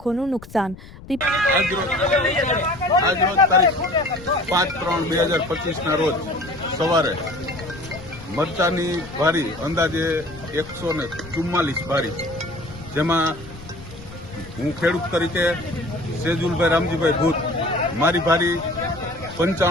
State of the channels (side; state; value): left; noise; rumble, 17 dB below the sound